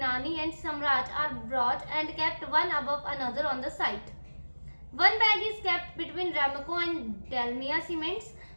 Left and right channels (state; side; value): inverted; both; correlation -1.00